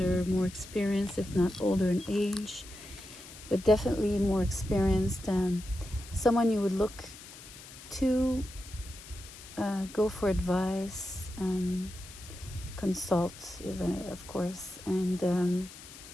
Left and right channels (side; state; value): left; noise; hiss, 16 dB below the sound